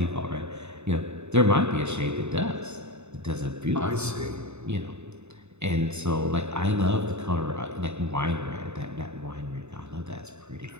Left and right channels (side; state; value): left; late; 0.82 ms